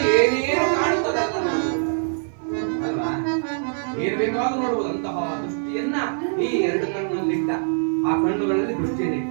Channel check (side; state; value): left; silent; 58 dB below the other